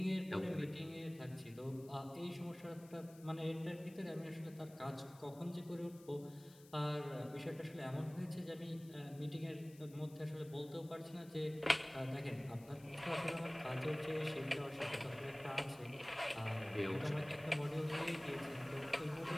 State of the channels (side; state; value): left; noise; hiss, 23 dB below the sound